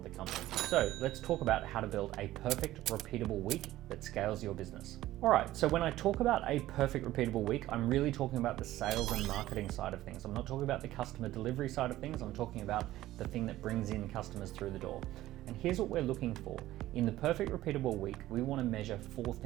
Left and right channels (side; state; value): left; quieter; 15.2 dB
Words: the company. So let's talk about how to build a perfect repeatable week that scales your business. All right, so when I talk about a perfect repeatable week, I'm really talking about the sales and marketing side of things. I'm not talking about the customer delivery side of things. I'm talking about the thing that brings in customers through the door. And here's what we're looking for. In the perfect repeatable week, we want to measure 4